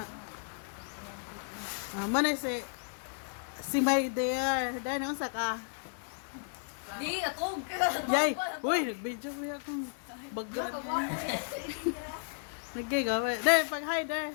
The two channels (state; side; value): silent; right; digital silence